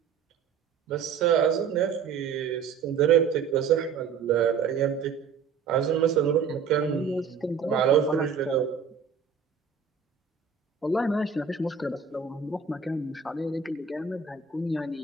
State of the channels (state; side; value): quieter; left; 6.3 dB